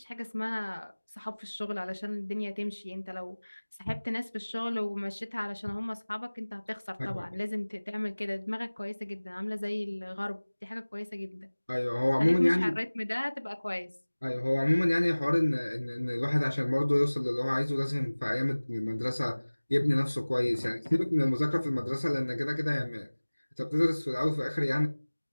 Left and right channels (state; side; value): inverted; both; correlation -1.00